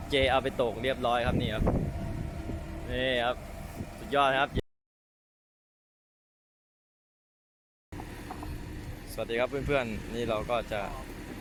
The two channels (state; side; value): identical; both; correlation 1.00